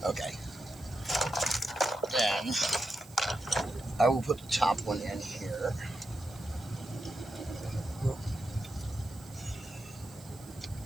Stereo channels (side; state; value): right; noise; hiss, 21 dB below the sound